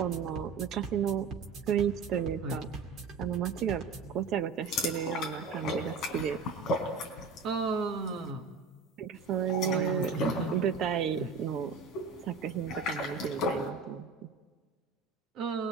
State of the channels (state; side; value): quieter; left; 4.7 dB